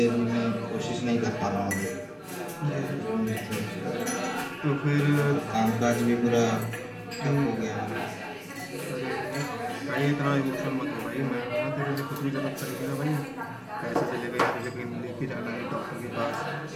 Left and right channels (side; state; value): both; identical; correlation 1.00